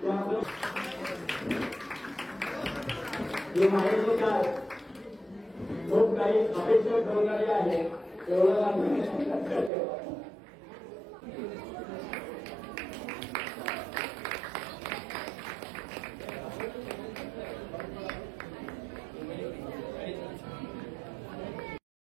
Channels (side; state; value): left; drops out; at 9.7 s